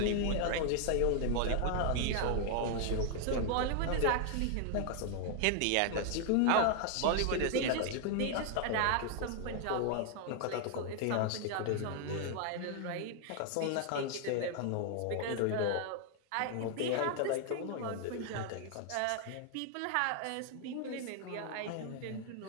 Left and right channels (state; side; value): different; both; correlation 0.00